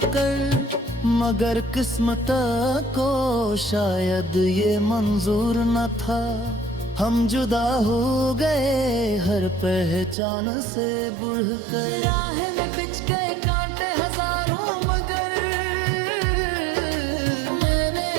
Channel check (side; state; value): left; drops out; at 10.2 s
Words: मगर किस्मत को शायद ये मंजूर न था, हम जुदा हो गए हर पहचान से बढ़कर। राह में पिच गए कांटे हजारों, मगर